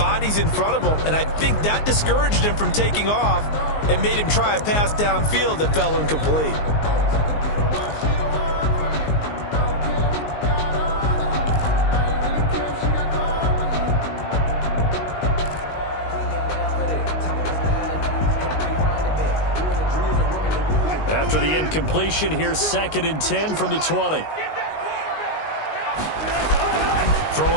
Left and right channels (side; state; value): right; late; 19 ms